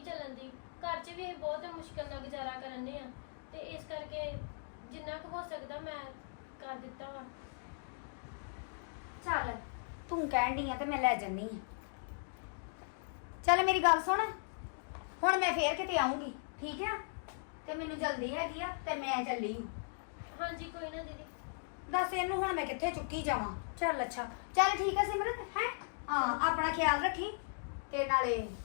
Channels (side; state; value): right; silent; digital silence